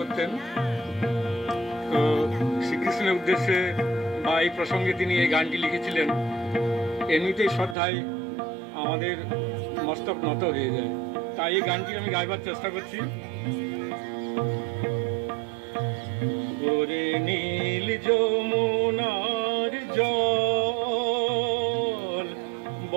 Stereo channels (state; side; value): drops out; left; at 7.8 s